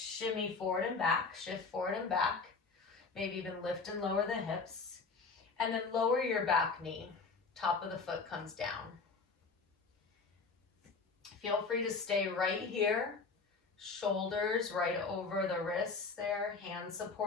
forward and back, shift forward and back, maybe even lift and lower the hips, and then lower your back knee. Top of the foot comes down. Feel free to stay right here, shoulders right over the wrists there, hands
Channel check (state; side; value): quieter; right; 4.5 dB